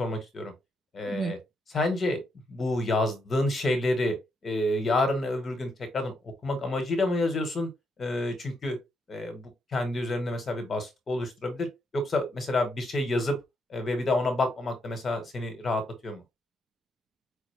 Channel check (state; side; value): normal; both; correlation 0.78